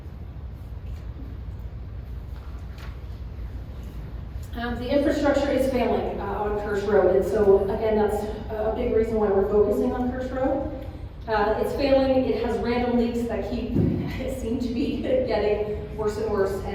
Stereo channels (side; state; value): both; identical; correlation 1.00